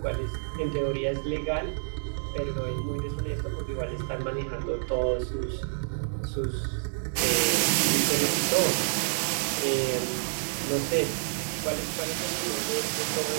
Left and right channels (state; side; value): silent; left; 59 dB below the other